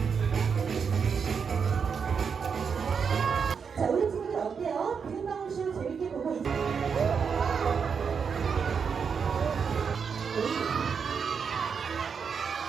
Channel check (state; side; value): quieter; left; 6.3 dB